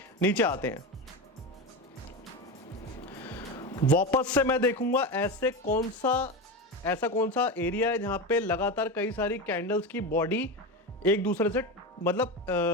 नीचे आते हैं, वापस से मैं देखूंगा ऐसा कौन सा एरिया है जहां पे लगातार कई सारी कैंडल्स की बॉडी एक दूसरे से मतलब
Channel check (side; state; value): both; normal; correlation 0.20